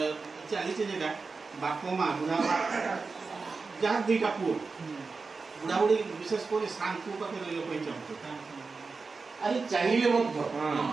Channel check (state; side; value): quieter; left; 4.4 dB